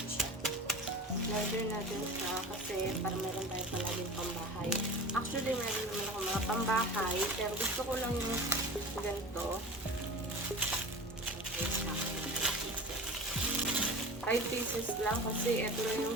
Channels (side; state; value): both; normal; correlation 0.34